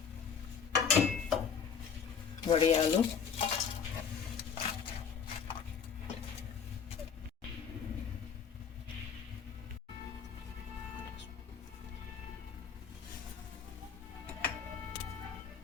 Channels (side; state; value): right; quieter; 6.9 dB